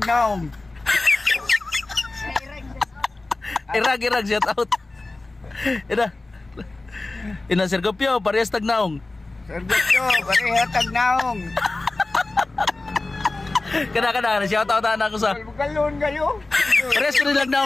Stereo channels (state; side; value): quieter; right; 3.1 dB